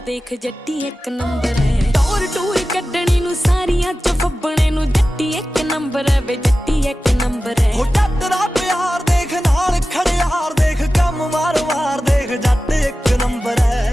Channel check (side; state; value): both; normal; correlation 0.95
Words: ਦੇਖ ਜੱਟੀ ਇੱਕ ਨੰਬਰ ਹੈ ਟੌਰ ਟੂਰ ਕੱਢਣੀ ਨੂੰ ਸਾਰੀਆਂ ਚ ਫੱਬਣੇ ਨੂੰ ਜੱਟੀ ਇੱਕ ਨੰਬਰ ਹੈ ਵੇ ਜੱਟੀ ਇੱਕ ਨੰਬਰ ਹੈ ਹੋ ਜੱਟ ਦਾ ਪਿਆਰ ਦੇਖ ਨਾਲ ਖੜਿਆਰ ਦੇਖ ਕੰਮ ਵਾਰ-ਵਾਰ ਦੇਖ ਜੱਟ ਇੱਕ ਨੰਬਰ ਹੈ